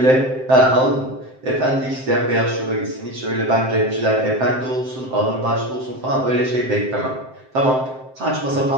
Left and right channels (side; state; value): left; late; 7.7 ms